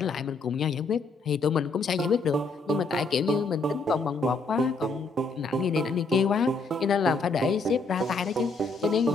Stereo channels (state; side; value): quieter; right; 3.7 dB